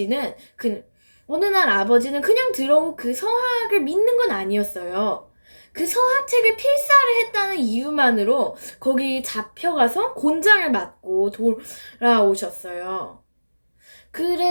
그 어느 날 아버지는 그냥 들어온 그 서학을 믿는 건 아니었어요. 그 서학책을 필사를 했다는 이유만으로 거기 잡혀가서 곤장을 맞고 돌아오셨어요.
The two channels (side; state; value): both; inverted; correlation -1.00